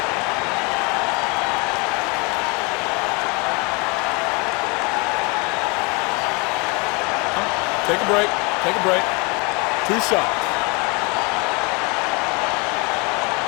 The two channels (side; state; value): right; quieter; 29.6 dB